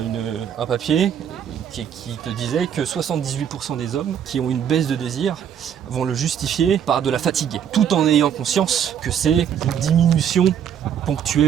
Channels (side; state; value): left; quieter; 8.7 dB